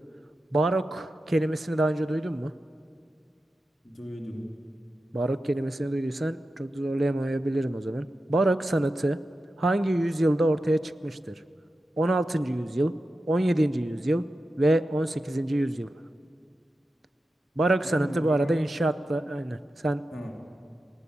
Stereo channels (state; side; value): normal; both; correlation 0.91